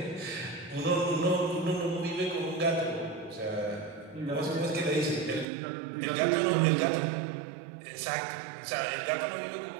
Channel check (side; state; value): left; drops out; at 5.5 s